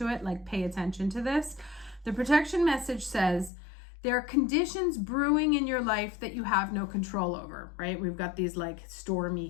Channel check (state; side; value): drops out; right; at 3.5 s